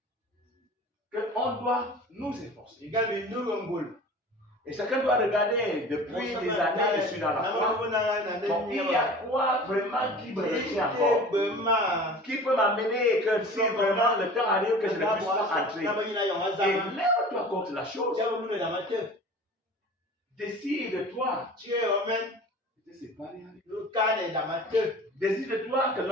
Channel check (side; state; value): both; normal; correlation 0.40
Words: Qu'on doit nous efforcer. Et chacun doit regarder depuis des années, je suis dans la foi. Donc, il y a quoi vraiment qui me retient encore? Qui peut m'amener que si vraiment le temps arrive que je ne puisse pas entrer? Et lève-toi contre la chose. Décide-toi. Décide-toi que